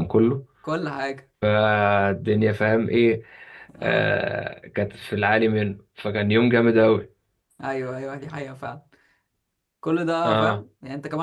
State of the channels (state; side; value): identical; both; correlation 1.00